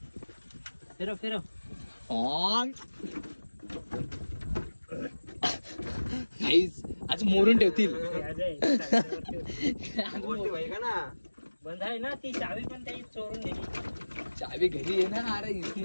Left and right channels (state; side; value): inverted; both; correlation -1.00